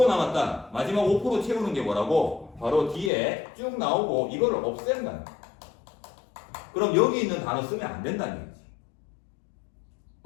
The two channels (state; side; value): drops out; right; at 3.1 s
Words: 남았다. 마지막 5% 채우는 게 뭐라고? 바로 뒤에 쭉 나오고 이거를 없앤다는 거야. 그럼 여기 있는 단어 쓰면 안 된다는 얘기지.